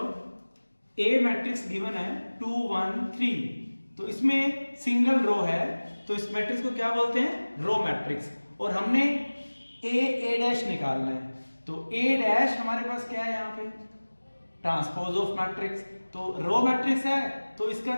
ए मैट्रिक्स गिवन है 2 1 3, तो इसमें सिंगल रो है, तो इस मैट्रिक्स को क्या बोलते हैं? Row matrix. और हमने ए डैश निकालना है, तो ए डैश हमारे पास क्या है यहाँ पे? Transpose of matrix. तो रो मैट्रिक्स है तो इसका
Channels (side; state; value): both; inverted; correlation -1.00